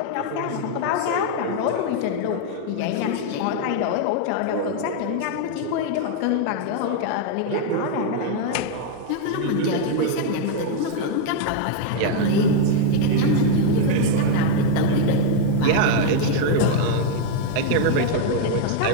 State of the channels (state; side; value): different; both; correlation 0.00